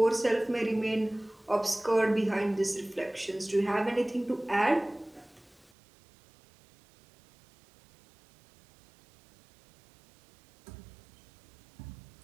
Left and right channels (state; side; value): drops out; left; at 5.7 s